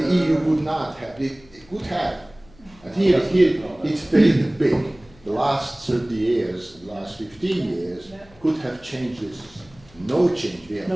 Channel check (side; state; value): left; noise; hum, 26 dB below the sound